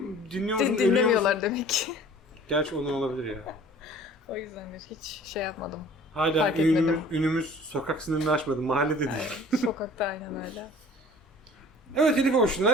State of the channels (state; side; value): normal; both; correlation 0.48